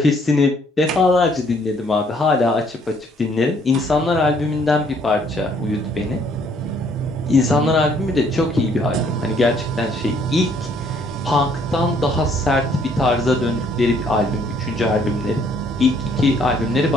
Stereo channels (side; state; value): both; normal; correlation 0.64